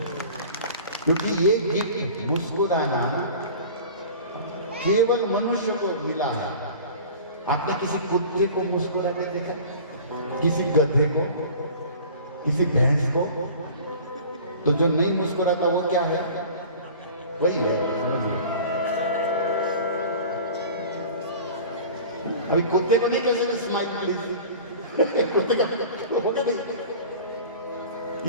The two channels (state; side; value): inverted; both; correlation -0.41